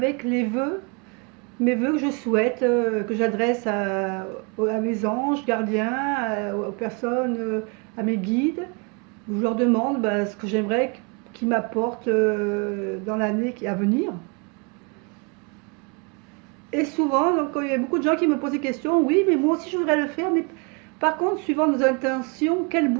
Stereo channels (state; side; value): quieter; left; 32.4 dB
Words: les vœux, mes vœux que je souhaite, que j'adresse à mes anges, gardiens, aux personnes, à mes guides. Où je leur demande ce que j'aimerais qu'ils m'apportent dans l'année à venir. Et souvent, donc, il y a beaucoup de gens qui me posent des questions. Oui, mais moi aussi je voudrais le faire, mais par contre, suivant nos intentions, quelle